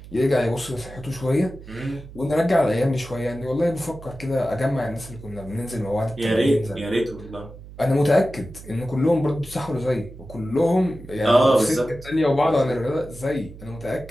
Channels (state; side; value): noise; right; hum, 16 dB below the sound